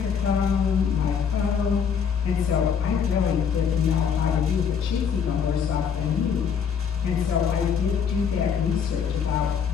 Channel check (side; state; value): right; quieter; 7.1 dB